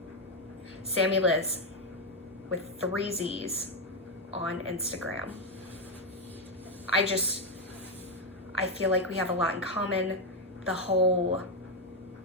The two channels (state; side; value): normal; both; correlation 0.05